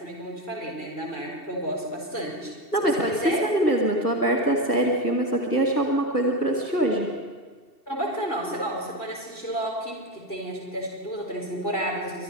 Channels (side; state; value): right; late; 2.7 ms